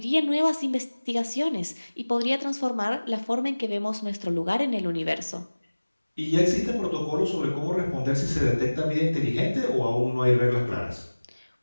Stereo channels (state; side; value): inverted; both; correlation -1.00